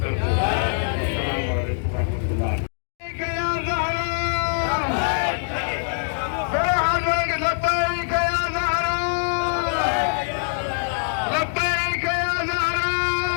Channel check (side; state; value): right; silent; digital silence